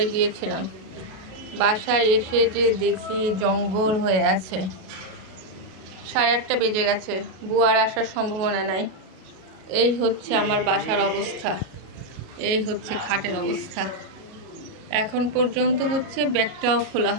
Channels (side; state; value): left; late; 37 ms